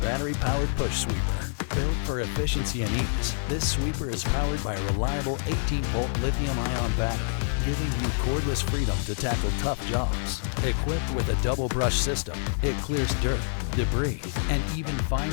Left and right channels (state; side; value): silent; right; digital silence